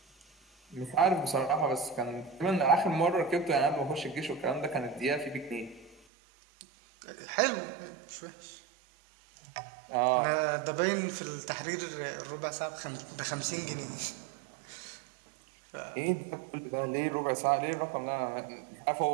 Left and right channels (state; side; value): drops out; left; at 6.0 s